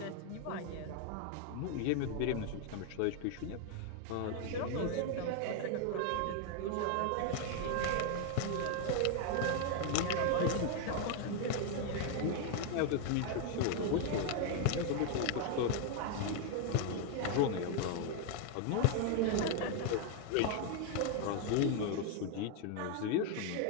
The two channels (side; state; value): both; different; correlation 0.00